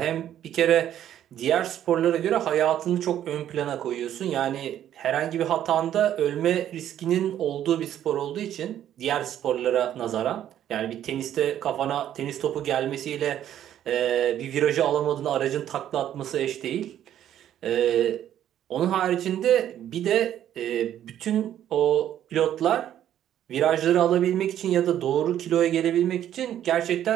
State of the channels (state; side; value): quieter; left; 11.0 dB